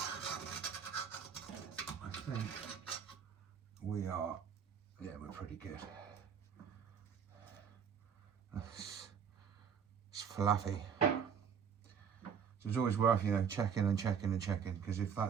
I think we are, yeah, we're pretty good. It's fluffy. So it's always worth, you know, checking, because if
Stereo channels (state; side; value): quieter; left; 7.4 dB